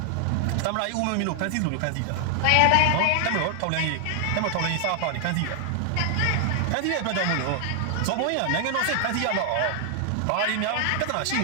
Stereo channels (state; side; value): different; both; correlation 0.00